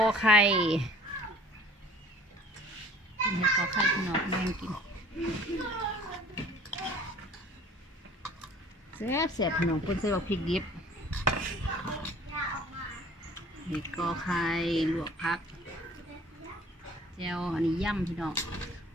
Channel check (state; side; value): normal; both; correlation 0.49